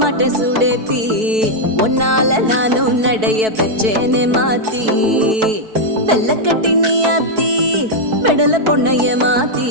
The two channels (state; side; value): late; left; 4.6 ms